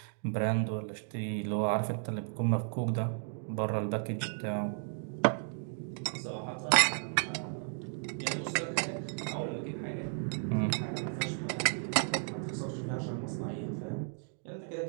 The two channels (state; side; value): silent; left; 55 dB below the other